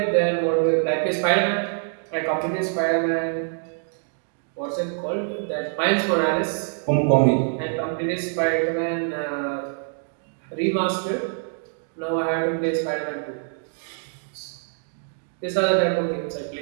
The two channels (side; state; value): left; silent; 62 dB below the other